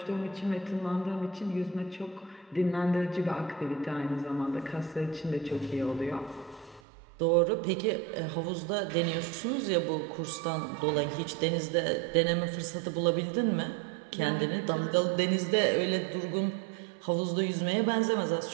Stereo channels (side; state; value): left; drops out; at 6.8 s